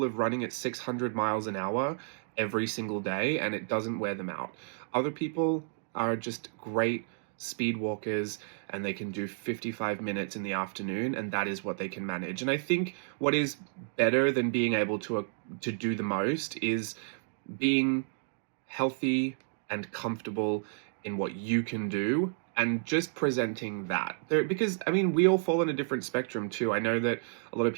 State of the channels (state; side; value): silent; left; 57 dB below the other